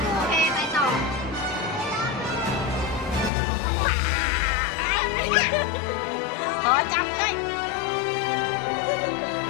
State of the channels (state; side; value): drops out; right; at 3.3 s